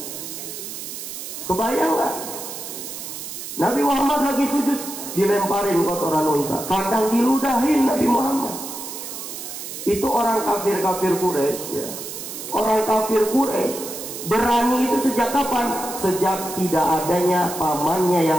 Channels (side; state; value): right; noise; hiss, 9 dB below the sound